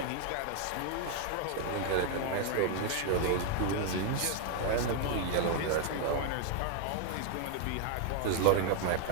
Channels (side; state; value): both; different; correlation 0.00